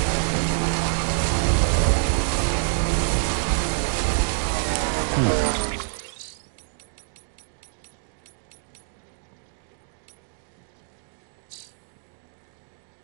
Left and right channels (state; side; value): silent; left; digital silence